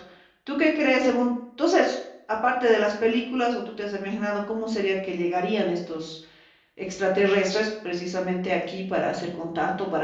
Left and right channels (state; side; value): identical; both; correlation 1.00